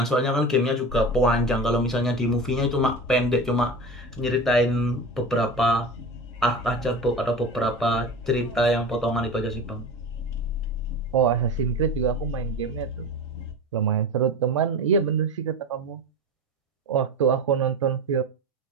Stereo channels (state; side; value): normal; both; correlation 0.30